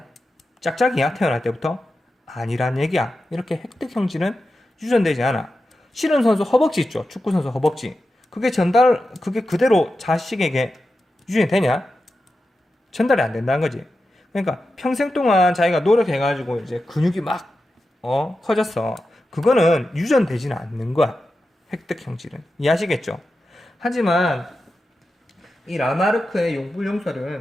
짝짝이야 태어날 때부터? 아니란 얘기야. 이렇게 획득 형질은 유전되지 않아. 씨름선수 허벅지 있죠. 축구선수 허벅지. 그게 그대로 자식에게 유전이 되냐? 전달이 안 된다는 거지. 그러니까 평생 동안 자기가 노력해가지고 이제 근육이 막 커졌어. 그거는 유전되지는 않는 거야. 획득 형질은. 이해하시겠죠? 하지만 이 라마르크의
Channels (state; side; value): normal; both; correlation 0.91